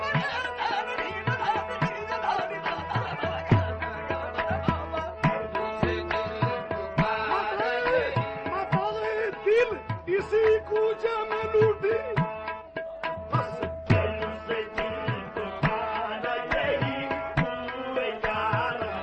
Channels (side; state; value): both; identical; correlation 1.00